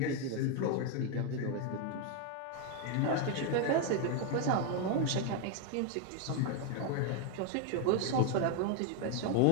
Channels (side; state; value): both; different; correlation 0.01